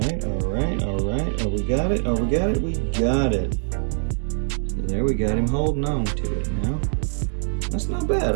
right. Oh, we got it. We got it. So there we got him holding on to it now. That's not bad.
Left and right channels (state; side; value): silent; left; 57 dB below the other